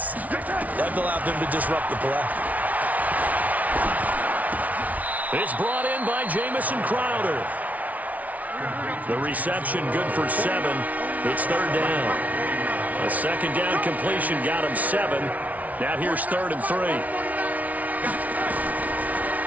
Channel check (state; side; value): late; left; 0.072 ms